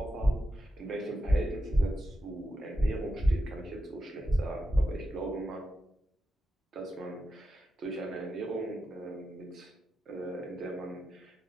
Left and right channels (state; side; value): normal; both; correlation 0.89